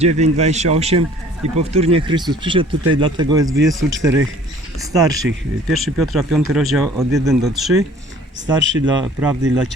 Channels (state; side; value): normal; both; correlation 0.53